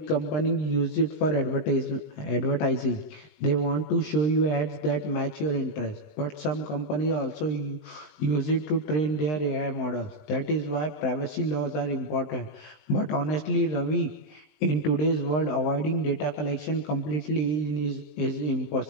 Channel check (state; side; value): late; right; 20 ms